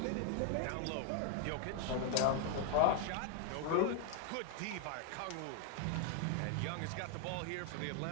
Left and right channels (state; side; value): different; both; correlation 0.00